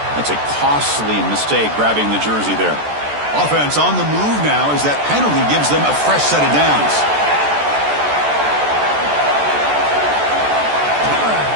That's a costly mistake, grabbing the jersey there. Offense on the move now as that penalty gives them a fresh set of downs.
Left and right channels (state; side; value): late; left; 14 ms